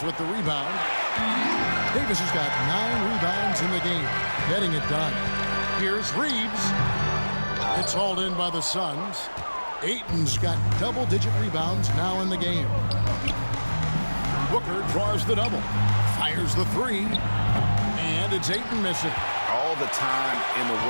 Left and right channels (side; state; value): both; inverted; correlation -1.00